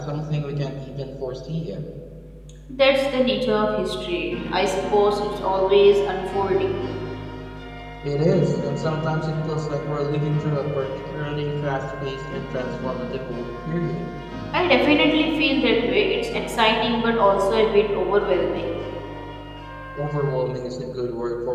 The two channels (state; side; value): identical; both; correlation 1.00